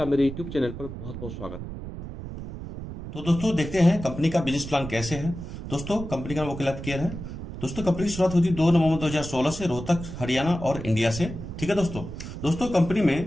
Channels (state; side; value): noise; right; rumble, 9 dB below the sound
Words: मेरे YouTube चैनल पर बहुत बहुत स्वागत है। तो दोस्तों देखते हैं कंपनी का बिजनेस प्लान कैसे है। दोस्तों कंपनी का नाम वकील केयर है। दोस्तों कंपनी की शुरुआत हुई थी 2 नवंबर 2016 से रोहतक हरियाणा और इंडिया से। ठीक है दोस्तों। दोस्तों कंपनी